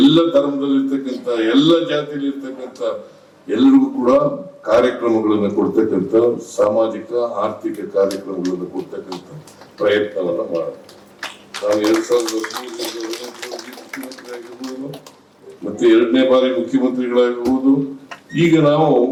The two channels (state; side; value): identical; both; correlation 1.00